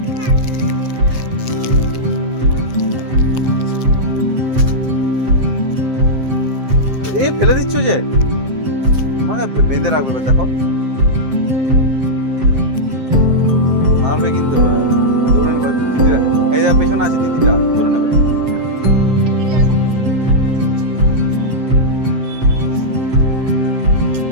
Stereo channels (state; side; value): late; left; 7.7 ms